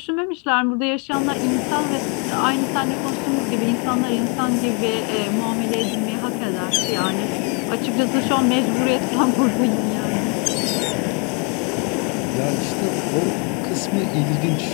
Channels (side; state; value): right; quieter; 32.6 dB